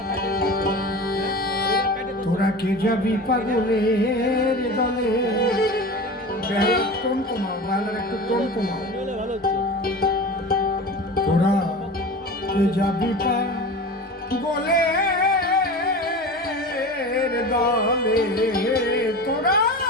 তোরা কে যাবি পাগলের দলে টোন কমাও বাংলার একটু টোন কমাও তোরা কে যাবি পাগলের দলে তোরা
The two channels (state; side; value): normal; both; correlation 0.32